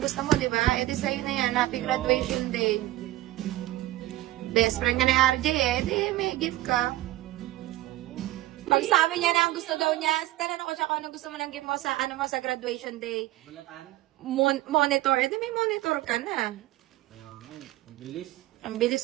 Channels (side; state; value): left; quieter; 16.9 dB